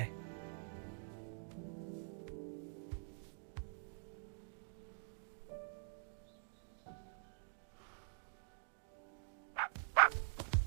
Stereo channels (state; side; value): silent; left; digital silence